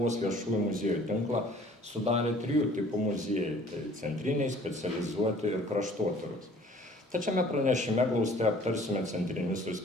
viešųjų muziejų tinklą sudarė 3 tipų muziejai, tai centriniai, specializuoti ir kraštotyros. Tačiame pranešime glaustai aptarsime centrinius ir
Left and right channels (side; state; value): both; normal; correlation 0.53